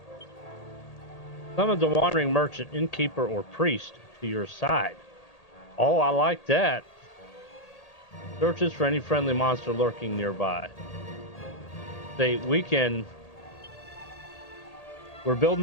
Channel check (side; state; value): right; late; 1.8 ms